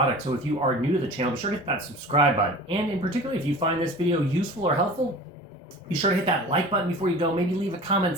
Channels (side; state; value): both; normal; correlation 0.39